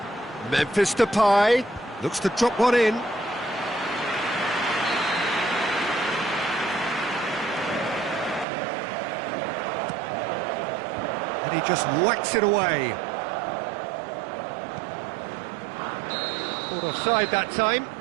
Memphis Depay looks to drop one in. And he just whacks it away. Caught offside that time.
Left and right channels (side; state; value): left; drops out; at 8.5 s